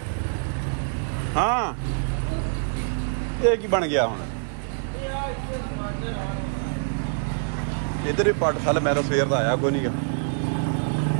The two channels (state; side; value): silent; left; digital silence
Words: हाँ ये की बन गया हुण इधर ही पट सल मैं तो सवेर का आया कोई नहीं